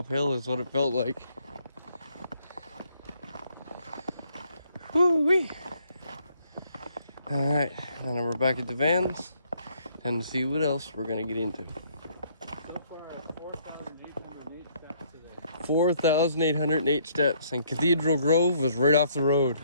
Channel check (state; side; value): inverted; both; correlation -0.67